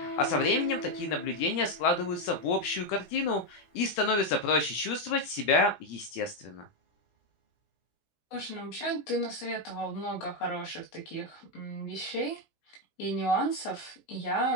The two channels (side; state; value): right; late; 17 ms